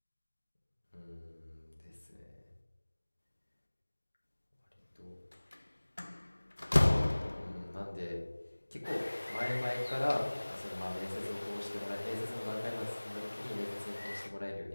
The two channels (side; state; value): both; inverted; correlation -1.00